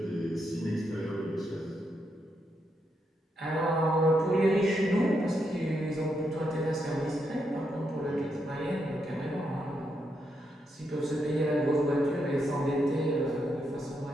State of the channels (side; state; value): both; normal; correlation 0.81